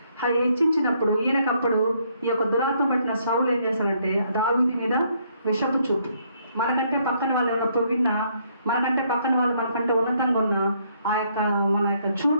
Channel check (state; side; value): inverted; both; correlation -0.70